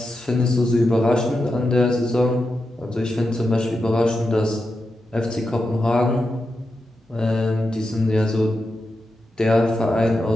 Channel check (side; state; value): both; normal; correlation 0.88